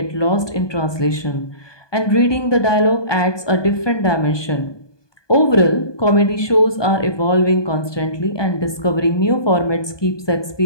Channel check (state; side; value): late; right; 1.2 ms